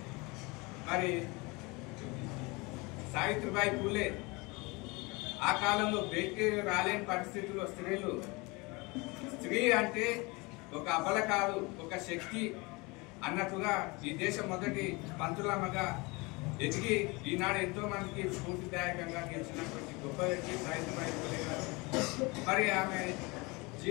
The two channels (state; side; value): quieter; right; 26.0 dB